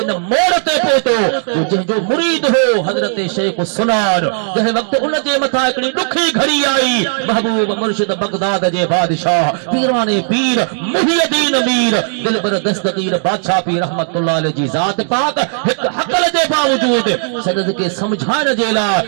इन मोड़ ते पहुतो जंहिंजो मुरीद हो हजरत शेख सुनार जंहिं वक्त उन जे मथा हिकिड़ी ॾुखी घड़ी आई महबूब मुर्शिद बगदाद जे बादशाह पीराने पीर मुहियद्दीन मीर दिलबर दस्तगीर बादशाह पीर रहमतुल्लाह अलैहि जी ज़ात पाक एक हक़ल जे बावजूद सदद के समझाइण जे लाइ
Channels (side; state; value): left; silent; 63 dB below the other